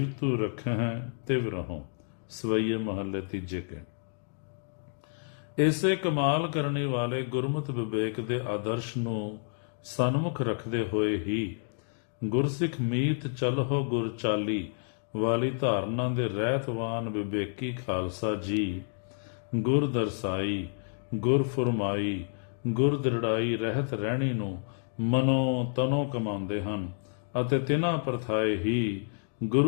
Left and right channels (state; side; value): silent; right; 57 dB below the other